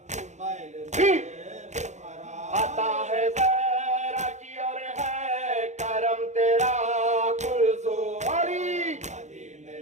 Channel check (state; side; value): late; left; 0.34 ms